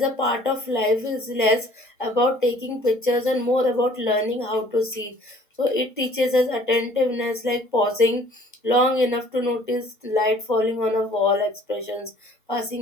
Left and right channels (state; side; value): normal; both; correlation 0.54